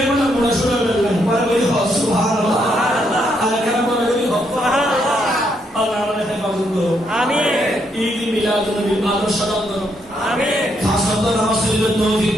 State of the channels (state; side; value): normal; both; correlation 0.76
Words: বলা বড় শুনে বললেন বড় বলি সুবহানাল্লাহ আর কেন বলি সুবহানাল্লাহ আল্লাহ আমাদের হেফাজত করো আমিন ঈদ মিলাদুন নবী আদর্শ দান করো আমিন খাসত নামাজ পড়তে তৌফিক